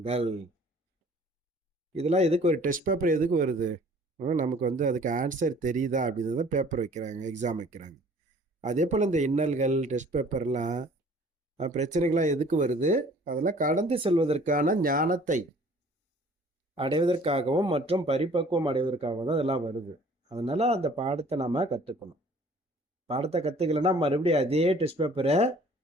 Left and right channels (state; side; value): normal; both; correlation 0.53